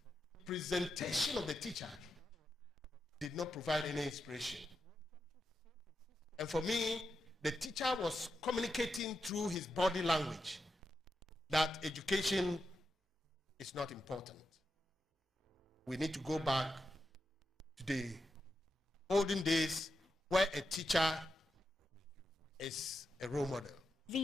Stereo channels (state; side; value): normal; both; correlation 0.87